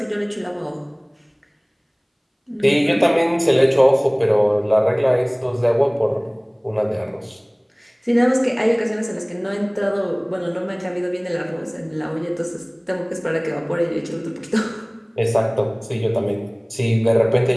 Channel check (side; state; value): both; identical; correlation 1.00